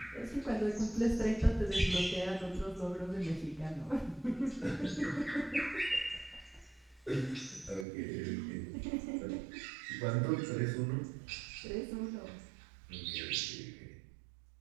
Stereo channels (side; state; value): left; drops out; at 7.9 s